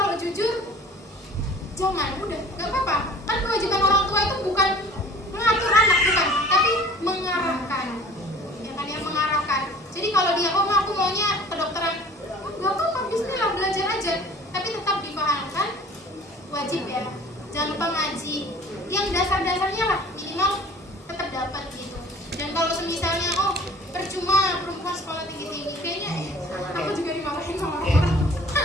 jujur jangan, udah nggak apa-apa. Kan kewajiban orang tua itu bukan mengatur anak, bukan, tapi mengarahkan, ya kan, yang mengarahkan. Jadi kalau dia aku maunya kedokteran, nggak apa-apa, bismillah, belajar aja, tapi tetap dipahamkan wajib ya. Jangan lupa ngaji, yang dasar-dasarnya lah minimal tetap dapat gitu. Dan kalau semisalnya percuma perempuan sekolah tinggi-tinggi, kayaknya aku juga dimarahin sama orang-orang.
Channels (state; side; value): normal; both; correlation 0.48